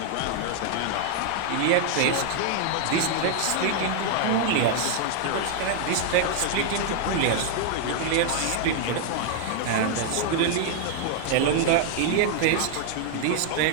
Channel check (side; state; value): both; different; correlation 0.00